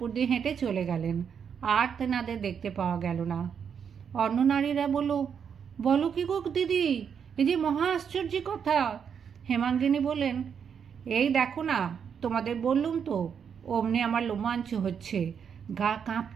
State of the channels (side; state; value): left; quieter; 7.3 dB